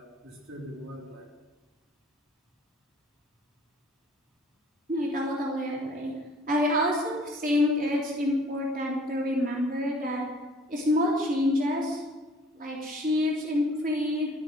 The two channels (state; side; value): normal; both; correlation 0.54